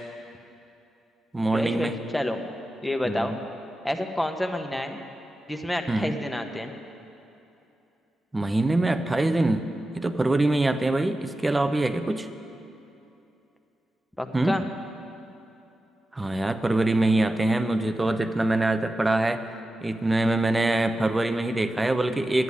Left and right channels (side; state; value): both; normal; correlation 0.93